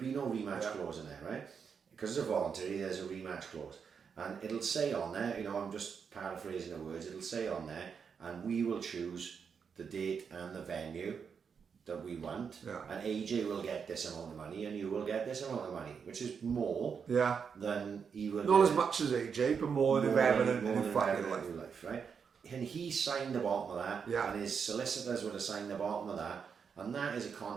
no rematch clause in there, right? Because it's a voluntary, there's a rematch clause. And it'll say on there, I'm just paraphrasing the words, it'll say on there, and we will choose the date and the venue that we want, and AJ will get this amount of money and you will get this amount of money, which is more than he will not as much as AJ, but more than ever in his fucking life, right? And he signed the bottom of that, and his solicitors would have signed the bottom of that, and that is a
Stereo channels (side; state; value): left; quieter; 6.4 dB